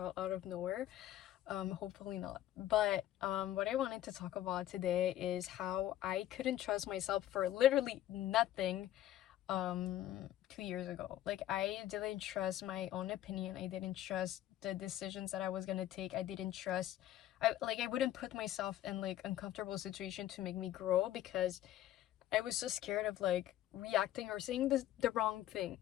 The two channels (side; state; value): right; quieter; 13.1 dB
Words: of nowhere. Hopefully not. But what I wanted to talk about today is how I couldn't trust myself for literally nothing 2 years ago. Like, I didn't trust my own opinion. I didn't trust the decisions that I was gonna take. I didn't trust I wouldn't put myself in like uncomfortable situation to make me grow because I was so scared of like reacting or saying the wrong thing,